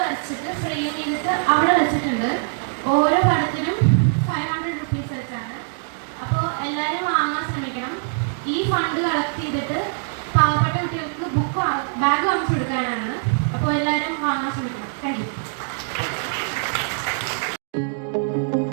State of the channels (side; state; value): left; silent; digital silence